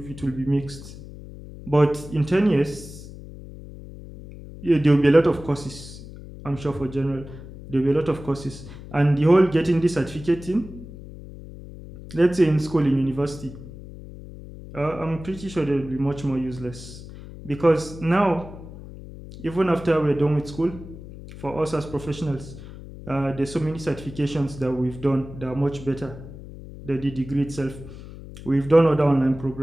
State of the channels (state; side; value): noise; left; hum, 14 dB below the sound